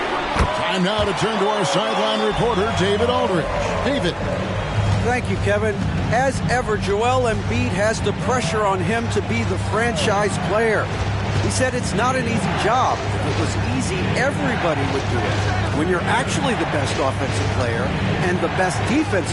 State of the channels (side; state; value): both; identical; correlation 1.00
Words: now to turn to our sideline reporter, David Aldridge. David. Thank you, Kevin. As ever, Joel Embiid has the pressure on him to be the franchise player. He said it's not an easy job. If it was easy, everybody would do it. When you're actually the best offensive player and the best